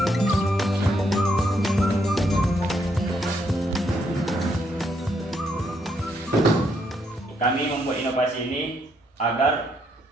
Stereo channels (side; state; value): both; normal; correlation 0.74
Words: Kami membuat inovasi ini agar